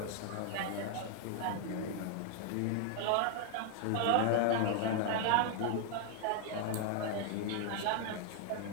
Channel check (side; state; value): both; different; correlation 0.00